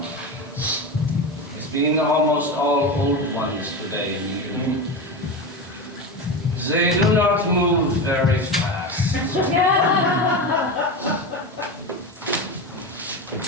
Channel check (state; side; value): normal; both; correlation 0.21